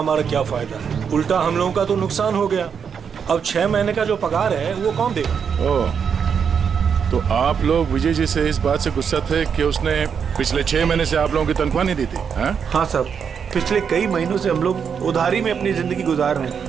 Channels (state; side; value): quieter; left; 6.9 dB